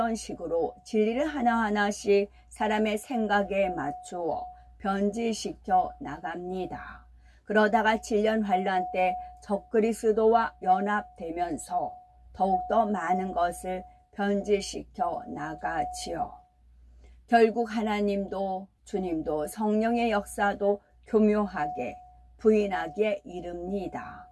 식으로 진리를 하나하나씩 사람의 생각에 맞추어 변질시켜 나갑니다. 그러다가 질년 환란 때 적그리스도와 연합되면서 더욱더 많은 것을 변질시켜 나가지요. 결국 하나님도 주님도 성령의 역사도 교묘하게 부인하기에 이릅니다.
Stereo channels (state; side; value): identical; both; correlation 1.00